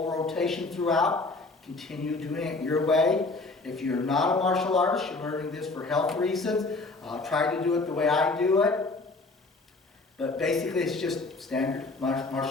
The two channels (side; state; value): right; quieter; 3.5 dB